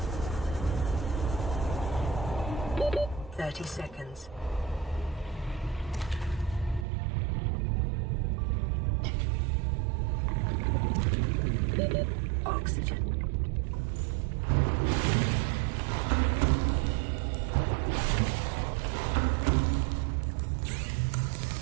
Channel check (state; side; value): drops out; left; at 6.9 s